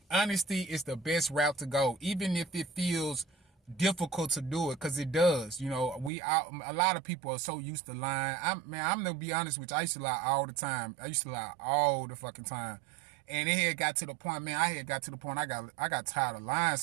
honesty is the best route to go, even if it feels difficult to do it, because it does. A lot of people are so used to lying. I'm gonna be honest with you. I used to lie all the time. I used to lie all the fucking time. And it had got to the point, man, I got tired of lying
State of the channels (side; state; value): left; drops out; at 6.1 s